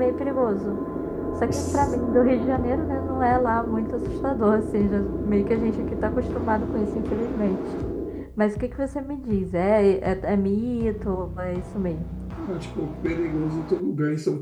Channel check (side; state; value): both; identical; correlation 1.00